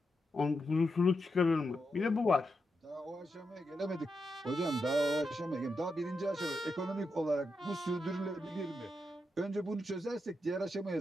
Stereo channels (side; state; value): both; normal; correlation 0.85